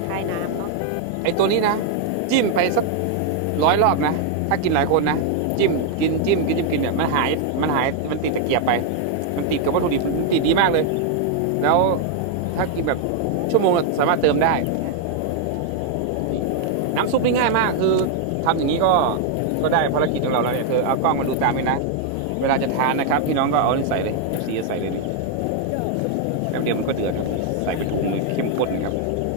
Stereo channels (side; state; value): both; different; correlation 0.00